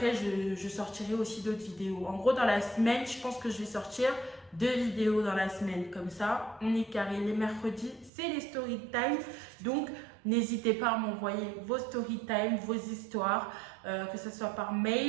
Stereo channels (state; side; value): drops out; left; at 8.1 s